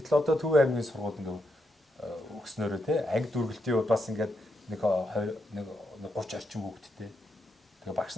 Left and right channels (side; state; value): both; normal; correlation 0.82